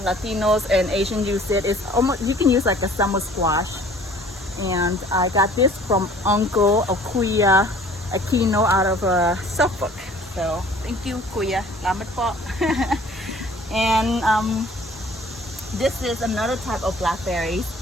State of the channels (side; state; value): both; normal; correlation 0.51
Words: Latinos and Asian use it. It's almost, you can use like a summer squash. And I got this from Uncle Akuya Aquino out of Suffolk. So thank you, Kuya. Salamat po. And this is another type of blackberries,